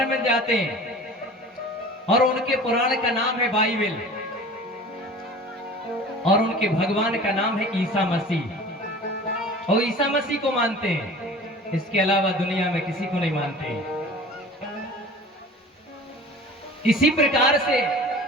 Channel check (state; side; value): normal; both; correlation 0.41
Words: में जाते हैं और उनके पुराण का नाम है बाइबल। और उनके भगवान का नाम है ईसा मसीह। और ईसा मसीह को मानते हैं, इसके अलावा दुनिया में किसी को नहीं मानते। इसी प्रकार से